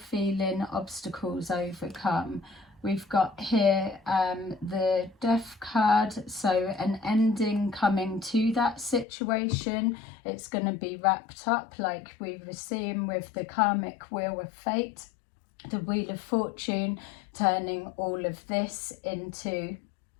obstacles overcome. We've got here the Death card, so an ending coming to that situation. It's going to be wrapped up like we were seeing with the karmic wheel of fate, the Wheel of Fortune, turning all of this into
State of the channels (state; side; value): drops out; right; at 9.1 s